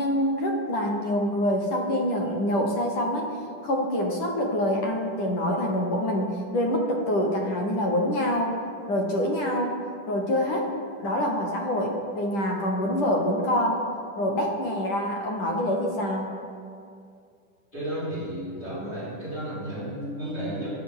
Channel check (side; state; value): right; late; 10 ms